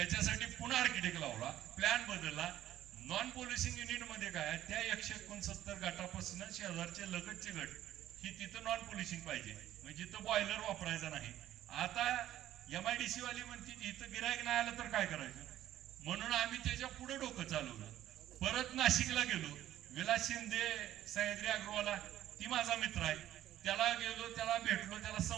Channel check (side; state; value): left; quieter; 12.9 dB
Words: पुन्हा आर्किटेक्ट लावला, प्लॅन बदलला. नॉन पोलिसिंग युनिट मध्ये काय, त्या 169 गटापासून शेजारचे लगतचे गट ही तिथं नॉन पोलिसिंग पाहिजे, म्हणजे तिथं बॉयलर वापरायचा नाही. आता MIDC वाली म्हणते इथं गिरायक नाही आलं तर काय करायचं, म्हणून आम्ही त्याच्या पुढे डोकं चालवलं. परत नाशिकला गेलो, विलास शिंदे सह्याद्री अग्रवाला ती माझा मित्र आहे, त्याला गेलो, त्याला भेटलो, त्याला